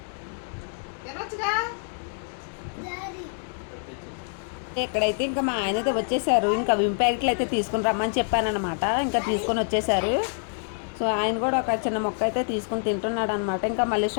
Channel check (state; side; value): silent; right; 61 dB below the other